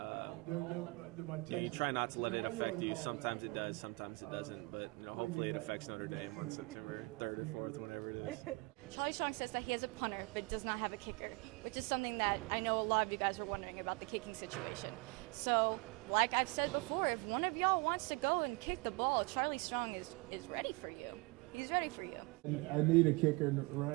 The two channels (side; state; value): left; quieter; 26.5 dB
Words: you try not to let it affect you. Sometimes it does, sometimes it doesn't. But, you know, hopefully it affects Notre Dame on September 3rd or 4th, whatever it is. Charlie Strong says that he is a punter, but does not have a kicker, which is something that I know a lot of you guys are wondering about the kicking situation. So, like I've said before, if one of y'all wants to go and kick the ball, Charlie Strong is ready for you. He's ready for you. I need a kicker, and